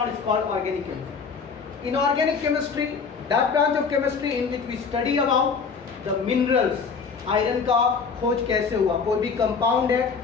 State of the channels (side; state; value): right; quieter; 5.5 dB